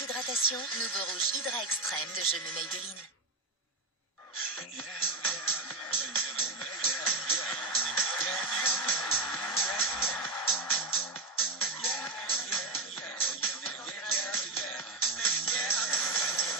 Nouveau rouge Hydra Extrême de Je Maybelline.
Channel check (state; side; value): quieter; left; 3.2 dB